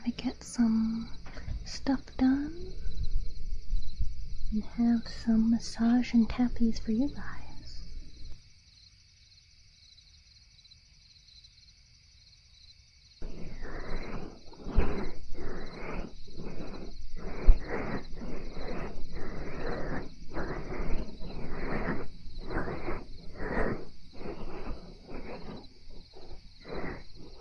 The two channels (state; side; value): identical; both; correlation 1.00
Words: to get some stuff done, and have some massage and tappies for you guys.